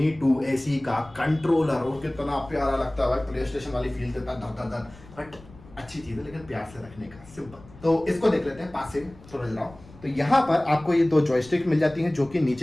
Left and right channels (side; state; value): left; noise; rumble, 22 dB below the sound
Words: 2 SE का कंट्रोलर, और कितना प्यारा लगता है भाई, प्ले स्टेशन वाली फील देता है, धर। बट अच्छी चीज है, लेकिन प्यार से रखने का, सिंपल। तो इसको देख लेते हैं पास से, थोड़ा जरा। तो यहाँ पर आपको ये 2 जॉयस्टिक मिल जाती हैं, जो कि